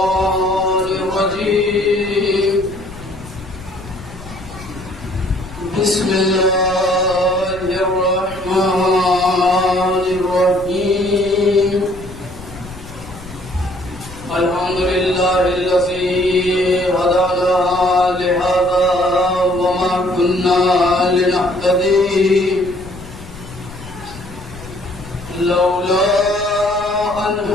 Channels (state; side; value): noise; left; rumble, 16 dB below the sound